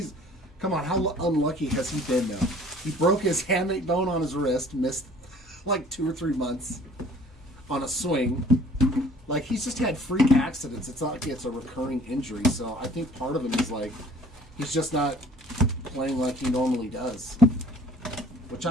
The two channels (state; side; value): normal; both; correlation 0.52